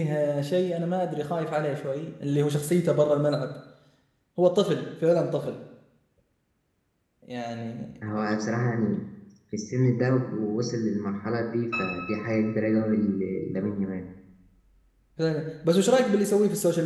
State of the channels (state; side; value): identical; both; correlation 1.00